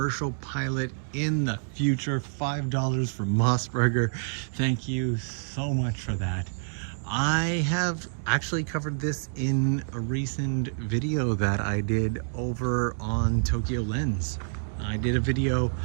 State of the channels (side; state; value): left; silent; digital silence